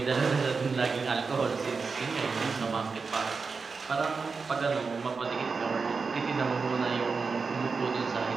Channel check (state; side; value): quieter; left; 4.8 dB